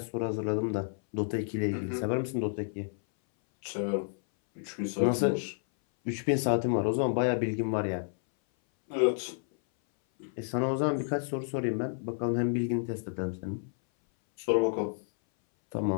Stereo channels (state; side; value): silent; right; 57 dB below the other